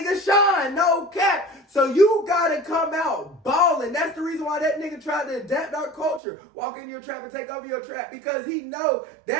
shine. No cap. So you gotta come out balling. That's the reason why that nigga tried to adapt our culture. Walk in your trap and take over your trap. Because he know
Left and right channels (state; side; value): drops out; left; at 6.2 s